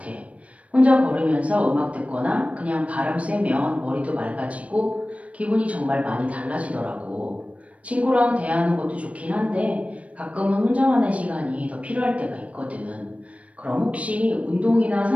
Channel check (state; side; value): late; left; 0.065 ms